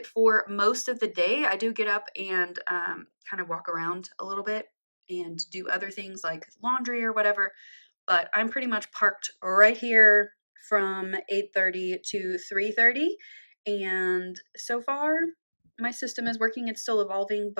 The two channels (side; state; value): both; inverted; correlation -1.00